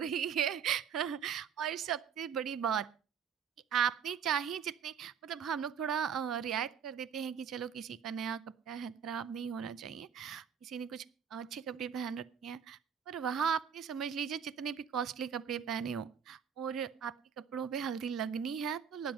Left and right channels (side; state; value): left; quieter; 7.6 dB